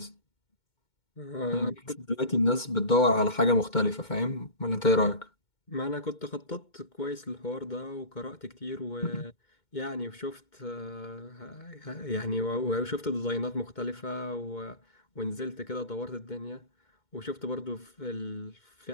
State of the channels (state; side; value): late; right; 2.2 ms